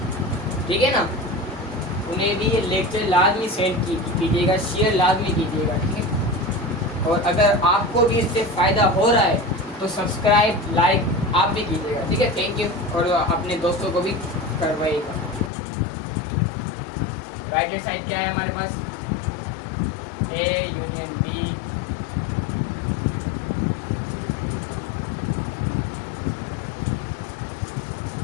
ठीक है ना। उन्हें भी ये लेक्चर लाजमी सेंड कीजिएगा, शेयर लाजमी कीजिएगा, ठीक है। और अगर आपको भी इससे फ़ायदा हो रहा है तो सब्सक्राइब लाइक आप भी कीजिएगा, ठीक है। थैंक यू, और अपने दोस्तों को भी करवाइएगा। राइट हैंड साइड क्या है हमारे पास, ए यूनियन बी,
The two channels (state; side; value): drops out; right; at 15.5 s